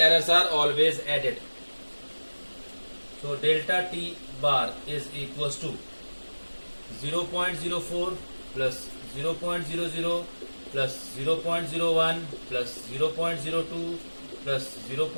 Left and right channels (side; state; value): both; inverted; correlation -1.00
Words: are always added. So delta t bar is equals to 0.04 plus 0.00 plus 0.01 plus 0.02 plus